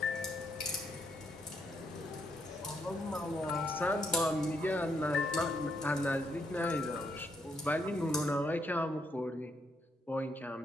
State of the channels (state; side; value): normal; both; correlation 0.75